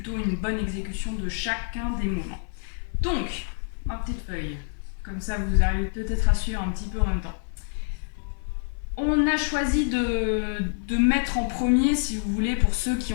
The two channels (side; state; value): right; silent; 60 dB below the other